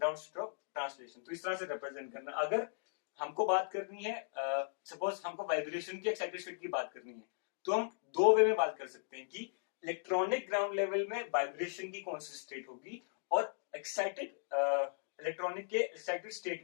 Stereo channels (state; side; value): silent; right; digital silence